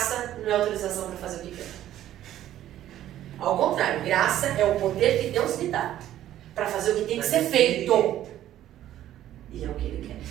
não é autorização para fazer o que quer. Ao contrário, graça é o poder que Deus me dá para fazer o que tem que ser feito. E é o que Ele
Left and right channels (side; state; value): left; quieter; 12.5 dB